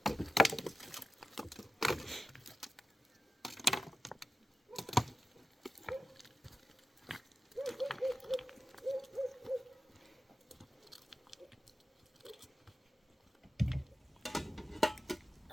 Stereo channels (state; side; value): normal; both; correlation 0.92